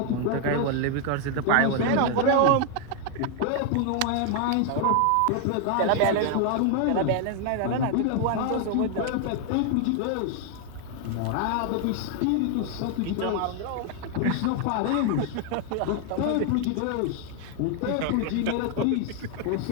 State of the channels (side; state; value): both; different; correlation 0.00